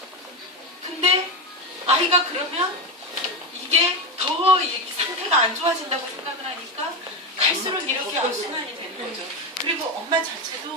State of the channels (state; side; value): normal; both; correlation 0.14